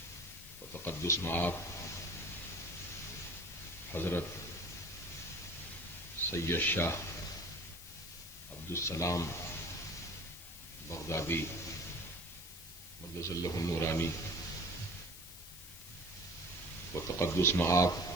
و تقدس مآب حضرت سید شاہ عبدالسلام بغدادی مدظ اللہ النورانی و تقدس مآب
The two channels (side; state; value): left; noise; hiss, 13 dB below the sound